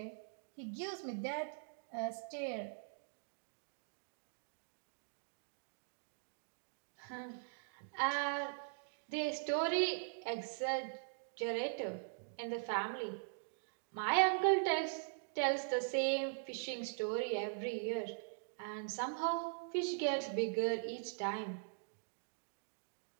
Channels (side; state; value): left; silent; digital silence